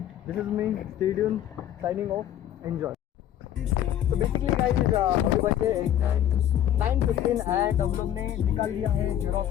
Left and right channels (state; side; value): quieter; right; 11.1 dB